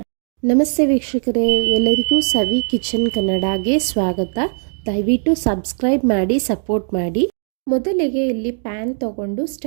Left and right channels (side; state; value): left; silent; 65 dB below the other